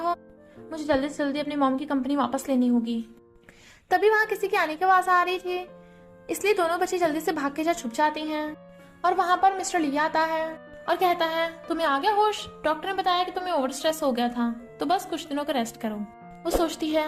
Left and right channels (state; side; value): identical; both; correlation 1.00